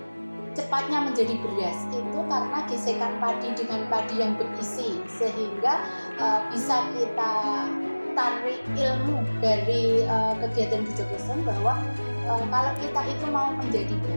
cepatnya menjadi beras itu karena gesekan padi dengan padi yang berisi, sehingga bisa kita tarik ilmu dari kegiatan Gejogleseng bahwa kalau kita itu mau menjadi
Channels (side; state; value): both; inverted; correlation -1.00